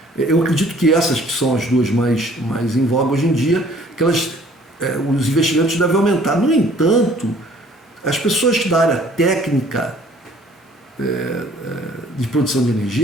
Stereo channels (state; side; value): normal; both; correlation 0.56